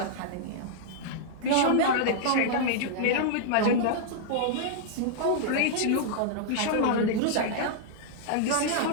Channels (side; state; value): both; different; correlation -0.01